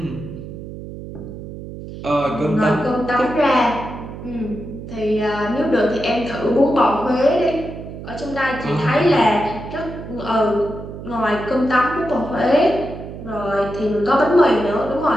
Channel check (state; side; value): noise; right; hum, 11 dB below the sound